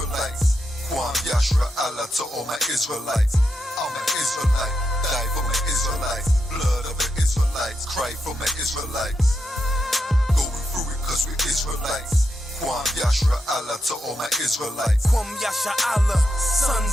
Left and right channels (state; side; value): normal; both; correlation 0.84